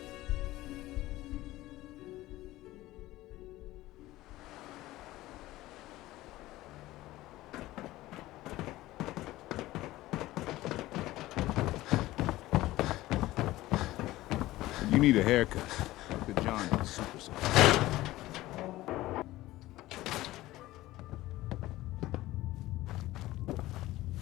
You need a haircut. The John is super soft.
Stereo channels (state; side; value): quieter; right; 17.0 dB